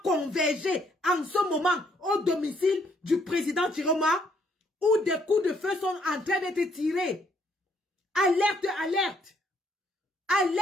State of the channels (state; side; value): normal; both; correlation 0.68